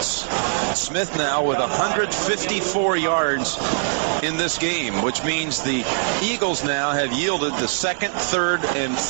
Smith now with 154 yards in this game, which means the Eagles now have yielded the second, third, and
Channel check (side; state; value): left; silent; digital silence